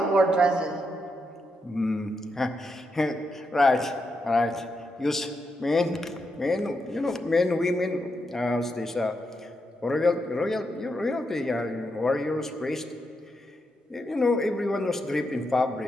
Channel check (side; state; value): both; normal; correlation 0.83